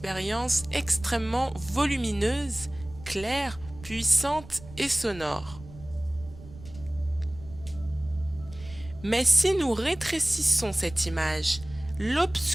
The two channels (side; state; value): right; noise; rumble, 17 dB below the sound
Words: extrêmement volumineuse, claire, puissante et sonore. Mais si nous rétrécissons cette image,